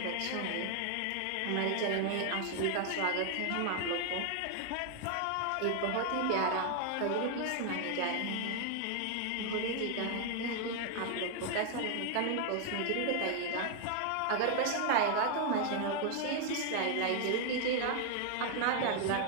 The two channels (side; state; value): both; different; correlation 0.00